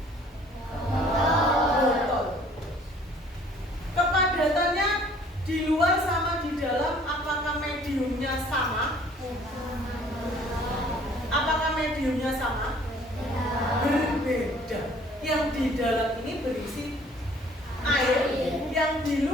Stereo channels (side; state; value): both; normal; correlation 0.55